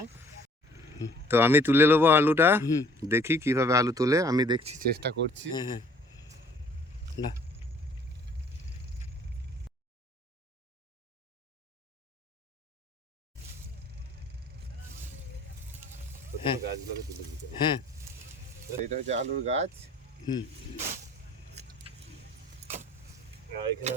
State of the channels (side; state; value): both; normal; correlation 0.56